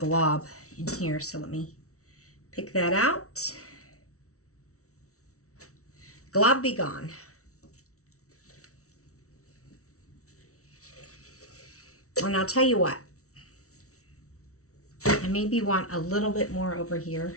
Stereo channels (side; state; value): right; late; 0.64 ms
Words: in here, so let me pick that out. Glob be gone. And I'll tell you what, I maybe want a little bit more over